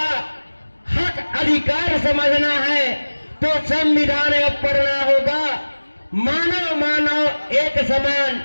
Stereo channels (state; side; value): inverted; both; correlation -1.00